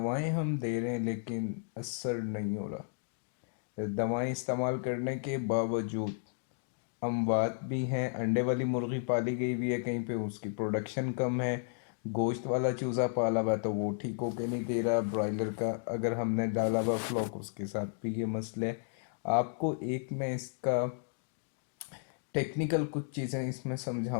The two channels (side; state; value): right; silent; digital silence